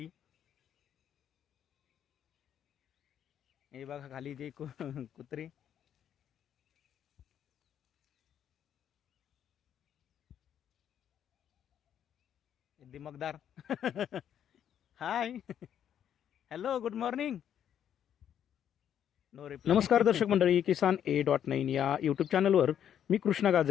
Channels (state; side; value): quieter; right; 9.6 dB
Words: हे बघा खाली ते कुत्री. दिमकदार. Hi hello good morning. नमस्कार दर्शक मंडळी, किसान A.9 या यूट्यूब चॅनलवर मी कृष्णा